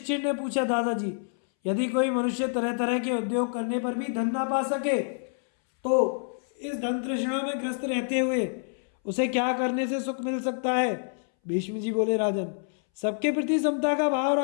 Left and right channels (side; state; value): right; silent; 60 dB below the other